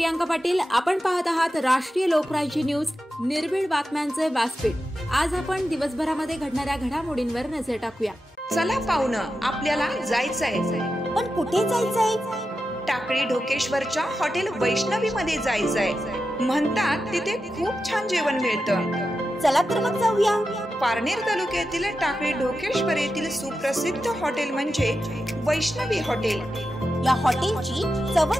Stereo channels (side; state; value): both; normal; correlation 0.90